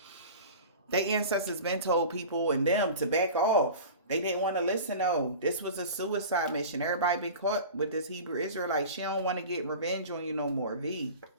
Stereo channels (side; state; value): both; inverted; correlation -0.36